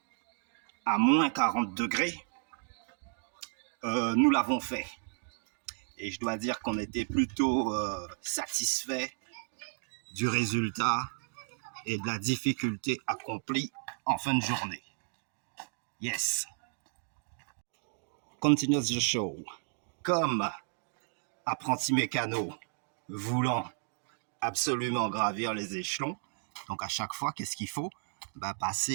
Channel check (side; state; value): left; silent; 56 dB below the other